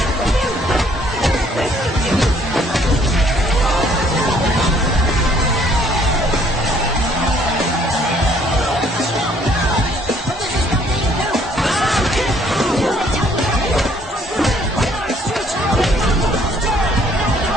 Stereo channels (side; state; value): both; normal; correlation 0.62